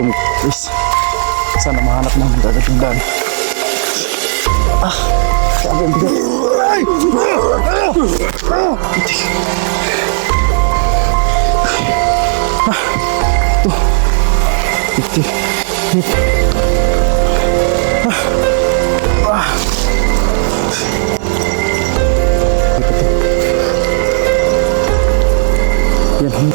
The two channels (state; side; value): silent; left; digital silence